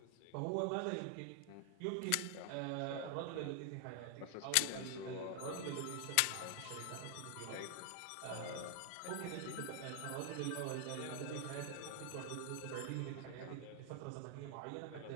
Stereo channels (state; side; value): different; both; correlation 0.00